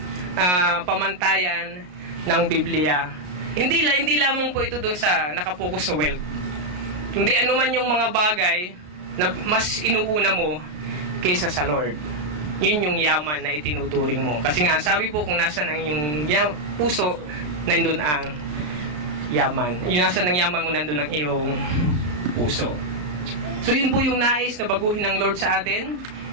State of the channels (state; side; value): late; left; 33 ms